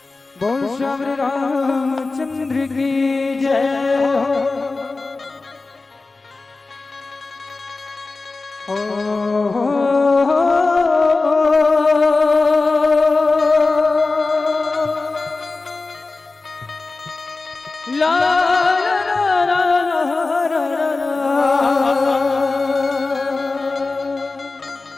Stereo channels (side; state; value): right; quieter; 3.6 dB